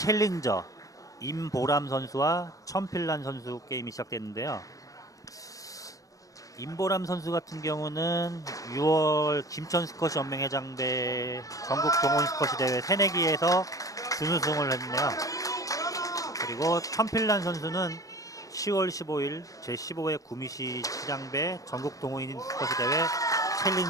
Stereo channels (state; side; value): late; right; 0.17 ms